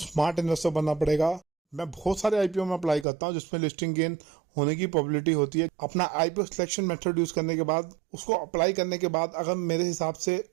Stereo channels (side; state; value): left; drops out; at 3.1 s